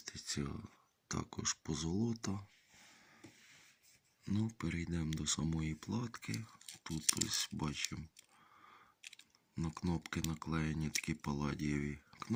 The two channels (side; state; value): both; identical; correlation 1.00